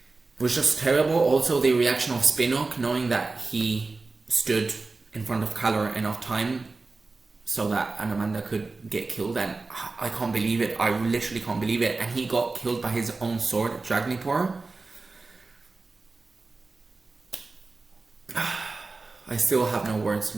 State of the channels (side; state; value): left; quieter; 3.7 dB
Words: was just terrible. Also the reaction of Spinnock, knowing that he stood in front of Calor enough time so that Anamanda could get killed, and I can't believe it. I literally can't believe it. And he got killed by his own sword, Dragnipor. I still have no words.